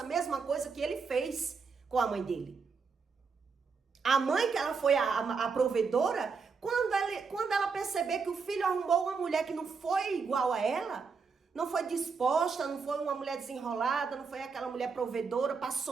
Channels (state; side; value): quieter; left; 5.2 dB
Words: a mesma coisa que ele fez com a mãe dele. A mãe, que ela foi a provedora, quando ela perceber que o filho arrumou uma mulher que não foi igual a ela, não foi disposta, não foi uma mulher desenrolada, não foi aquela mulher provedora para